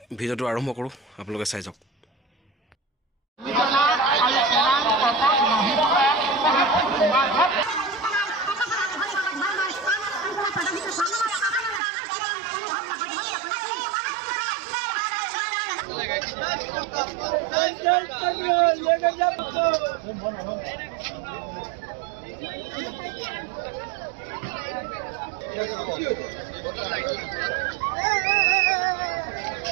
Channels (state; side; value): drops out; left; at 11.8 s